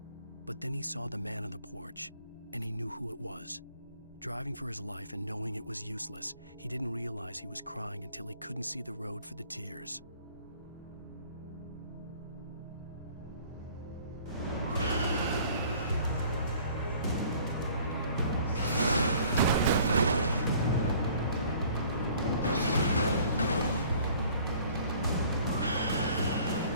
But then he saw the man on the porch, and he knew who it was. Driving for his life and knowing it was useless, he didn't realize he was crying until he couldn't see the road for the tears.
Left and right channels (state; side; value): inverted; both; correlation -0.54